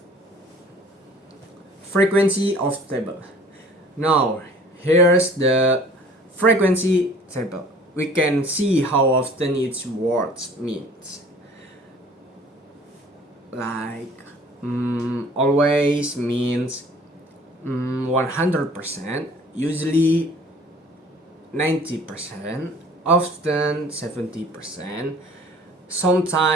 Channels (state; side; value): normal; both; correlation 0.50